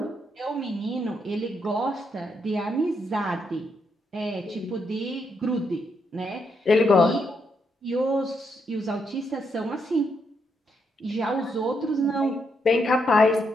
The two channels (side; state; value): both; normal; correlation 0.79